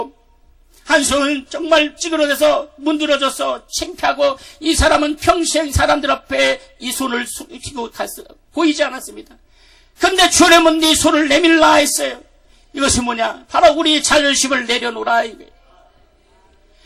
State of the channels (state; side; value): identical; both; correlation 1.00